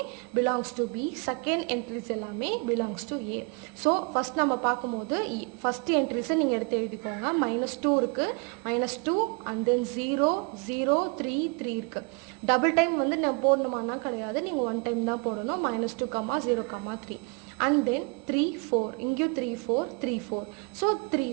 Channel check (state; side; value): quieter; left; 33.0 dB